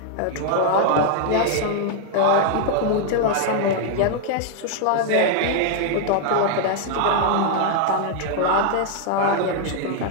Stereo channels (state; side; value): different; both; correlation 0.00